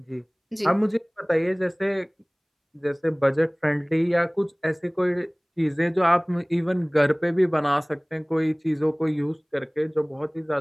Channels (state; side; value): identical; both; correlation 1.00